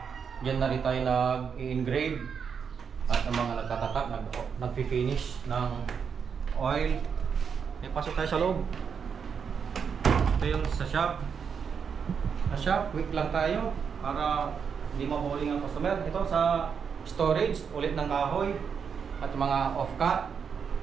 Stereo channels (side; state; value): left; quieter; 6.6 dB